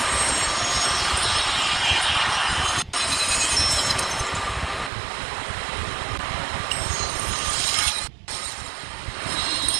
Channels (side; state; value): left; drops out; at 4.9 s